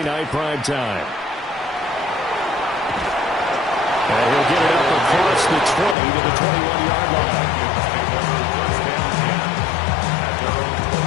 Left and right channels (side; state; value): right; drops out; at 6.0 s